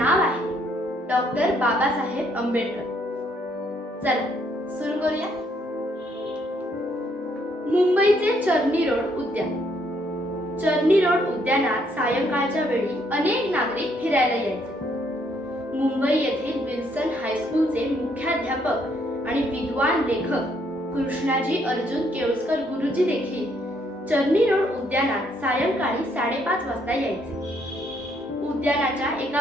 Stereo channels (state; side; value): normal; both; correlation 0.70